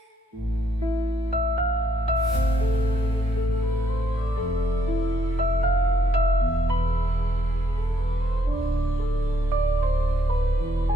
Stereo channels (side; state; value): both; normal; correlation 0.71